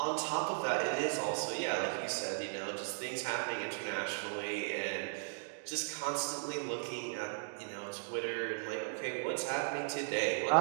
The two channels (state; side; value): silent; left; digital silence